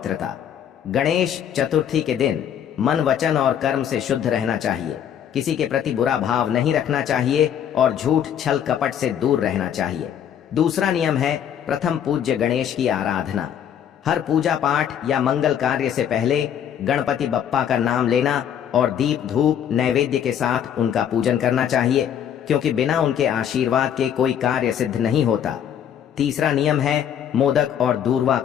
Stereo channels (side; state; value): right; quieter; 9.2 dB